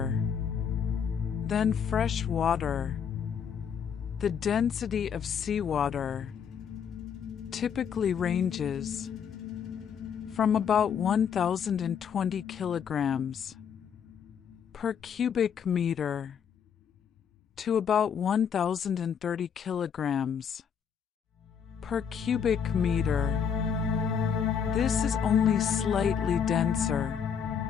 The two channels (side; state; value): right; quieter; 7.5 dB